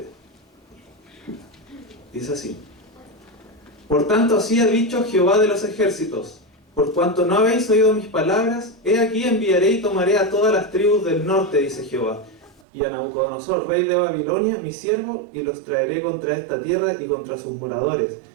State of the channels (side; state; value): left; drops out; at 12.6 s